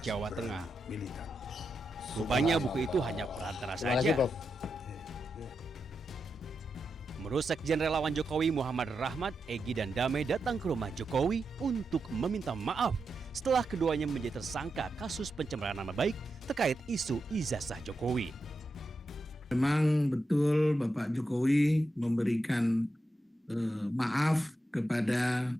Jawa Tengah. Militan. Rupanya buku itu hanya perantara saja. Menurut Sekjen Relawan Jokowi Muhammad Rahmat, Egy dan Damai datang ke rumah Jokowi untuk meminta maaf setelah keduanya menjadi tersangka kasus pencemaran nama baik terkait isu ijazah Jokowi. Memang betul Bapak Jokowi memberikan maaf kepada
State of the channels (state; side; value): normal; both; correlation 0.87